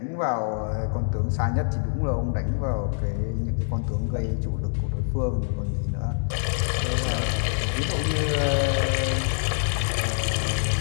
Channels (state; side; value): silent; right; digital silence